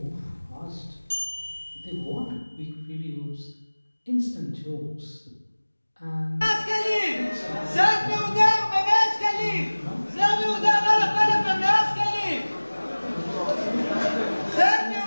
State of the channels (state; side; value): inverted; both; correlation -1.00